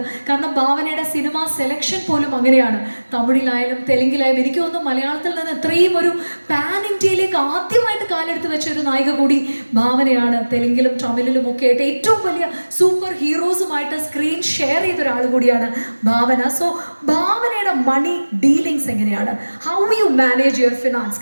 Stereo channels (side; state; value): both; inverted; correlation -1.00